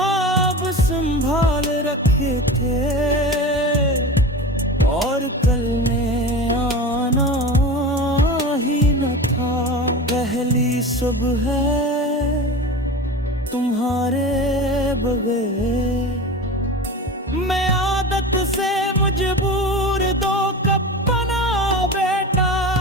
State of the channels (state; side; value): normal; both; correlation 0.30